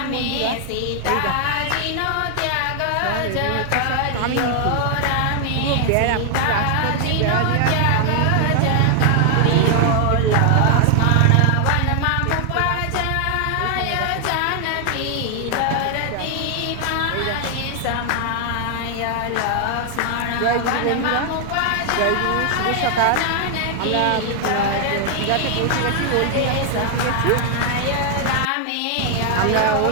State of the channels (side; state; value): both; different; correlation 0.00